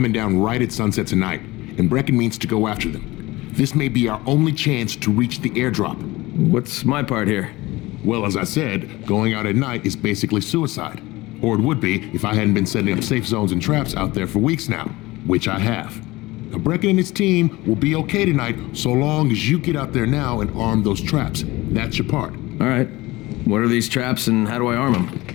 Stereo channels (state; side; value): quieter; right; 20.2 dB